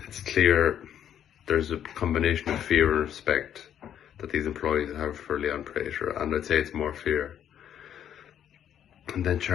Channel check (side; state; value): right; quieter; 9.8 dB